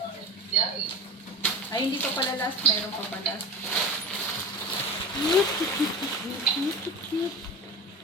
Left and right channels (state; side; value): normal; both; correlation 0.30